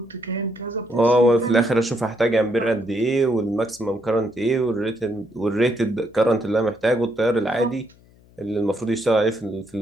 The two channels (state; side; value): noise; left; hum, 28 dB below the sound